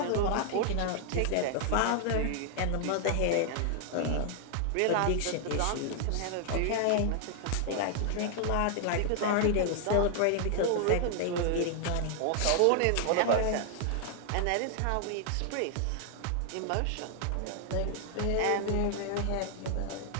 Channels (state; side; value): different; both; correlation 0.00